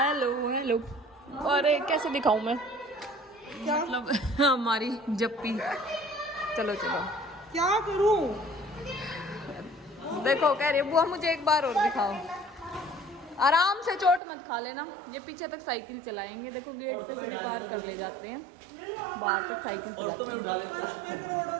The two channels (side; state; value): left; drops out; at 14.2 s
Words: hello. और कैसे दिखाऊं मैं, मतलब हमारी जप्पी। चलो चलो क्या करूं? देखो कह रही बुआ मुझे एक बार और दिखाओ। आराम से चोट मत खा लेना। ये पीछे तक साइकिल चलाएंगे। देखो गेट पे से पार कर ले जाते हैं, बाहर तक साइकिल चलाते हैं।